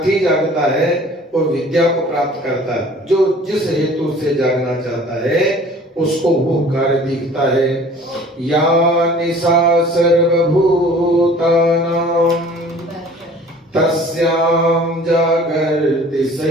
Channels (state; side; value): normal; both; correlation 0.48